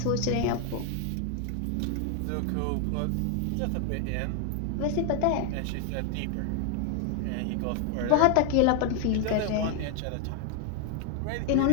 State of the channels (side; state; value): both; different; correlation 0.00